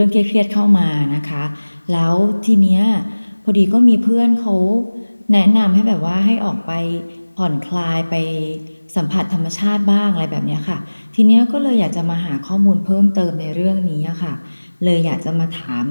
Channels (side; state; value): both; inverted; correlation -1.00